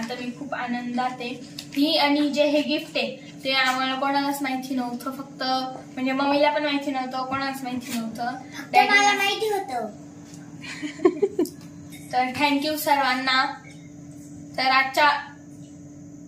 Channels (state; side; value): identical; both; correlation 1.00